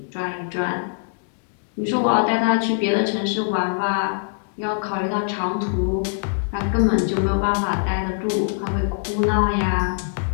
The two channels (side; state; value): right; silent; digital silence